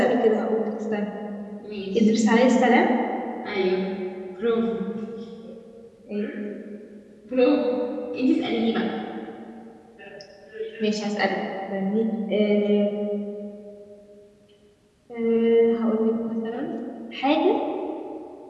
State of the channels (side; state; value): both; identical; correlation 1.00